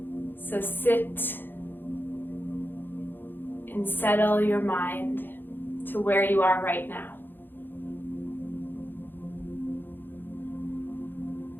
So sit and settle your mind to where you are right now.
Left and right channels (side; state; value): right; late; 0.096 ms